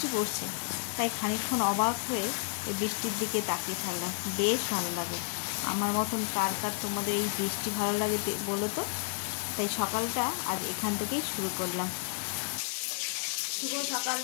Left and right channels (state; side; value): silent; right; digital silence